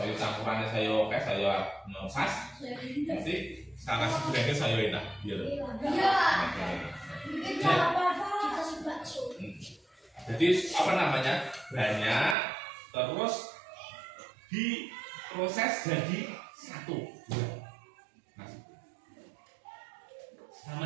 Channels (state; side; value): drops out; left; at 12.4 s